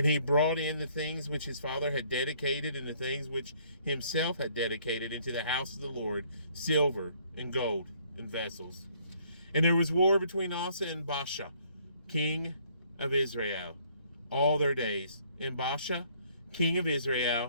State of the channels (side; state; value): both; inverted; correlation -0.63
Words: he brought in the things which his father had dedicated, and the things which himself had dedicated into the house of the Lord, silver and gold and vessels. And there was war between Asa and Baasha, king of Israel, all their days. And Baasha, king of